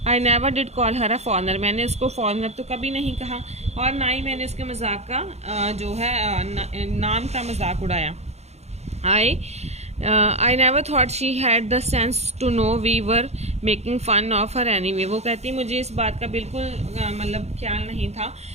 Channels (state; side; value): late; left; 0.31 ms